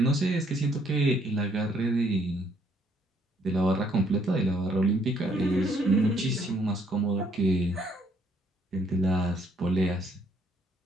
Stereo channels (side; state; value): both; normal; correlation 0.68